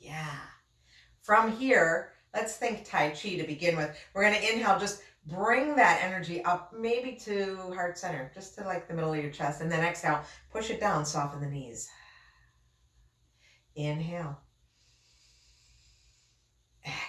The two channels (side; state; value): both; identical; correlation 1.00